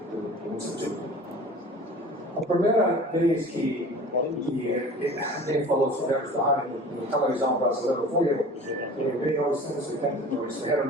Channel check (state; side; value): normal; both; correlation 0.41